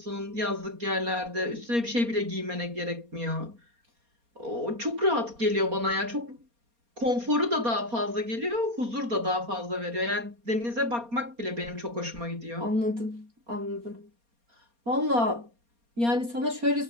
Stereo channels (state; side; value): late; left; 4.3 ms